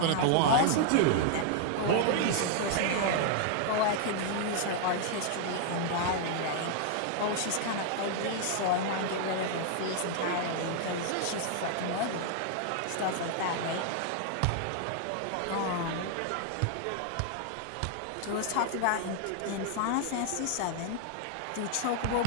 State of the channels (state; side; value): different; both; correlation 0.00